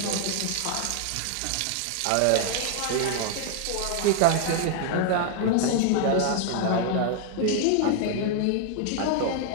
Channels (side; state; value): both; different; correlation 0.00